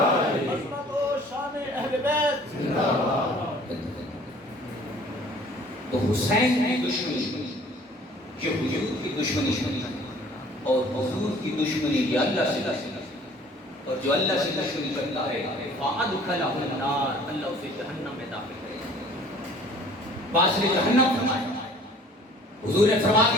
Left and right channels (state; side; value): normal; both; correlation 0.52